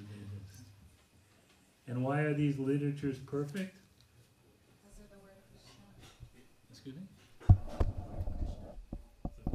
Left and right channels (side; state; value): both; identical; correlation 1.00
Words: And why are these literatures perfect? Because of the word Krishna. Excuse me? The